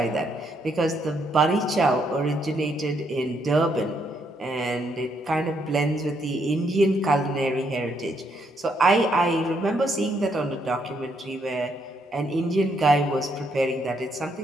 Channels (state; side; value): normal; both; correlation 0.74